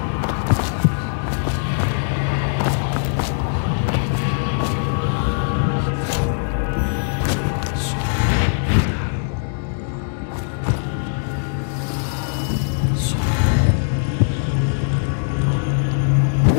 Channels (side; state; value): right; silent; 65 dB below the other